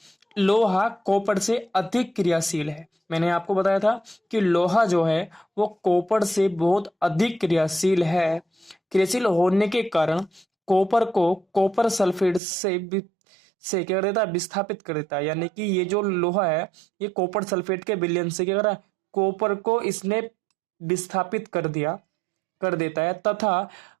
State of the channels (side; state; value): left; drops out; at 12.4 s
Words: लोहा कॉपर से अधिक क्रियाशील है। मैंने आपको बताया था कि लोहा जो है वो कॉपर से बहुत अधिक क्रियाशील है। क्रियाशील होने के कारण कॉपर को कॉपर सल्फेट से क्या कर देता है, विस्थापित कर देता है। यानी कि ये जो लोहा है ये कॉपर सल्फेट के विलयन से क्या कर रहा है, कॉपर को इसने विस्थापित कर देता है, तथा